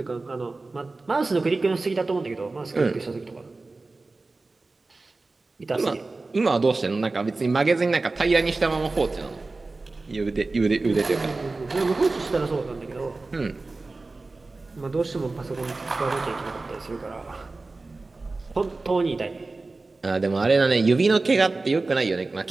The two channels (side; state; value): left; quieter; 3.5 dB